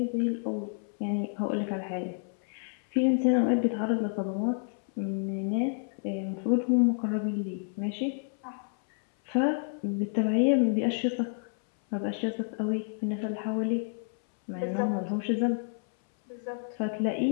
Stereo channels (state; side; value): silent; right; 58 dB below the other